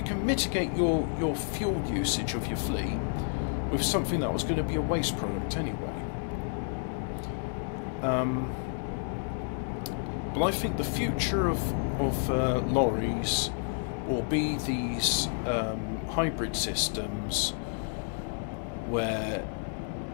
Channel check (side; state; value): right; silent; digital silence